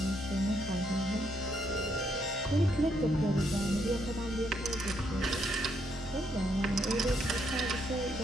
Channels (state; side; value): normal; both; correlation 0.74